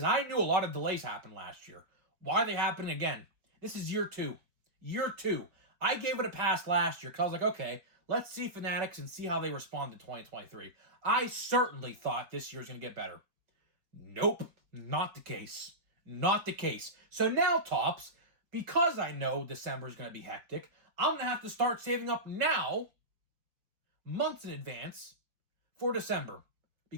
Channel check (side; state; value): left; late; 4.7 ms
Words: I knew a lot of delays happened last year. Why are they happening again? This is year two. Year two. I gave it a pass last year because I was like, okay, let's see Fanatics and see how they respond to 2023. I certainly thought this year's going to get better. Nope, not the case. Not the case. So now, Tops, because I know December is going to be hectic, I'm going to have to start saving up now, months in advance, for December.